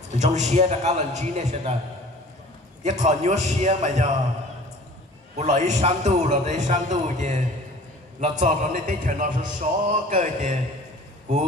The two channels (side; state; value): both; normal; correlation 0.46